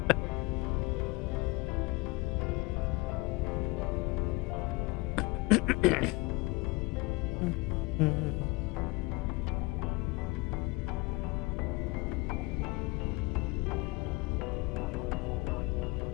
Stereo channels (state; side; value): quieter; right; 24.5 dB